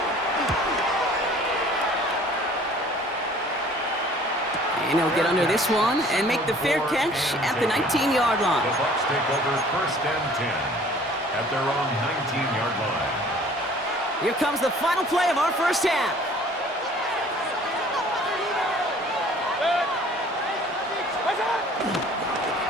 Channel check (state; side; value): normal; both; correlation 0.52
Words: And he'll get under this one and make the fair catch at the 19-yard line. The Bucs take over first and 10 at their own 19-yard line. Here comes the final play of our first half.